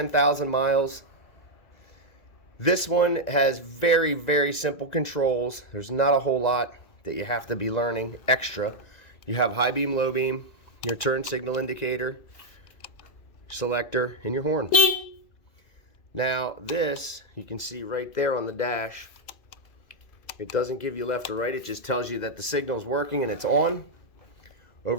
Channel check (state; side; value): late; right; 2.0 ms